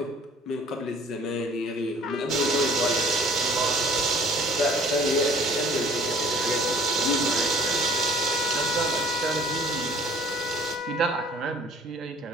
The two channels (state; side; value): normal; both; correlation 0.52